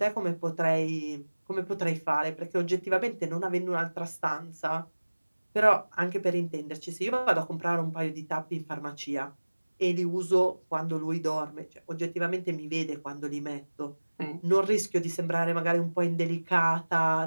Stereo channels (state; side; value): inverted; both; correlation -1.00